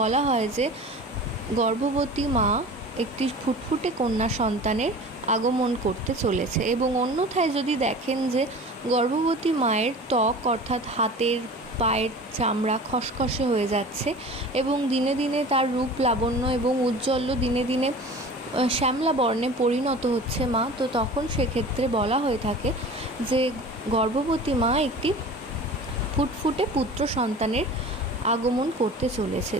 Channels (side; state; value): both; normal; correlation 0.39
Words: হয় যে গর্ভবতী মা একটি ফুটফুটে কন্যা সন্তানের আগমন করতে চলেছে। এবং অন্যথায় যদি দেখেন যে গর্ভবতী মায়ের ত্বক অর্থাৎ হাতের পায়ের চামড়া খসখসে হয়ে যাচ্ছে এবং দিনে দিনে তার রূপ লাবণ্য এবং উজ্জ্বল্য দিনে দিনে শ্যামলা বর্ণে পরিণত হচ্ছে মা, তো তখন সেক্ষেত্রে বলা হয়ে থাকে যে গর্ভবতী মা একটি ফুটফুটে পুত্র সন্তানের আগমন করতে চলেছে।